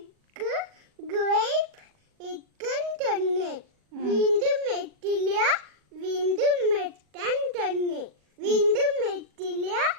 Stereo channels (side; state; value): left; late; 40 ms